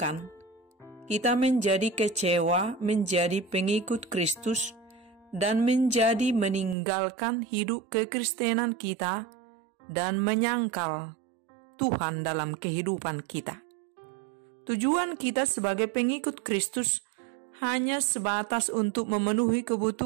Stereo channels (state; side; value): drops out; left; at 6.8 s